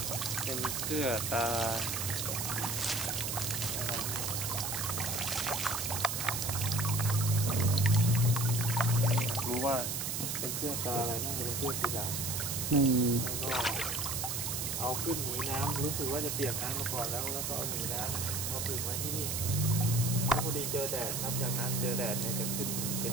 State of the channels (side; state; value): right; noise; hiss, 1 dB below the sound